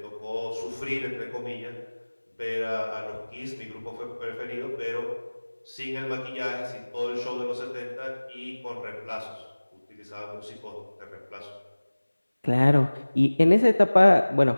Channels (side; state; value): both; inverted; correlation -1.00